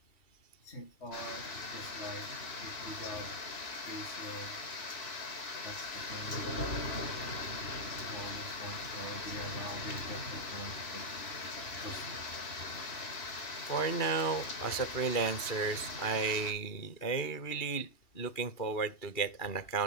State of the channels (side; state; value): right; late; 2.7 ms